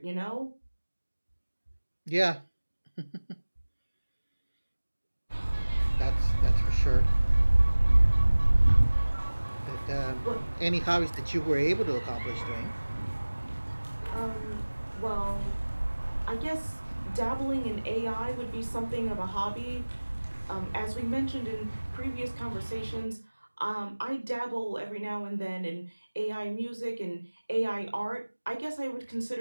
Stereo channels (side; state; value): both; inverted; correlation -1.00